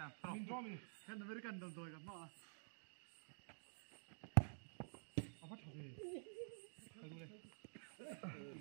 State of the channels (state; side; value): silent; left; digital silence